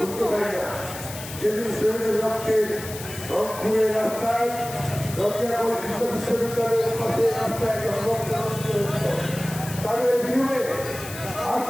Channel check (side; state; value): left; noise; hiss, 12 dB below the sound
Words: যেদিন শহীদের রক্তের রংপুরের রাস্তায় বিশ্ববিদ্যালয়ের পাশে রাস্তায় তাদের বিরুদ্ধে